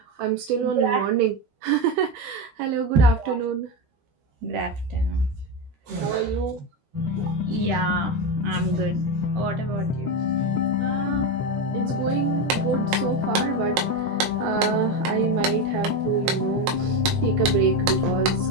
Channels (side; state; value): left; late; 13 ms